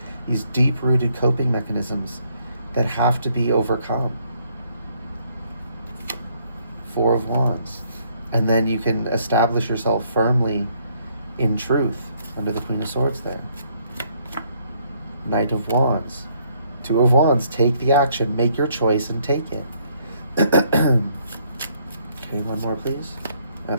These deep-rooted coping mechanisms that have to be overcome. 4 of Wands. And then you can establish yourself firmly in truth under the Queen of Swords there. Knight of Wands. 2 of Wands. Take the action. Make your choice and take it. Okay, one more, please.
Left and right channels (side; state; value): both; inverted; correlation -0.67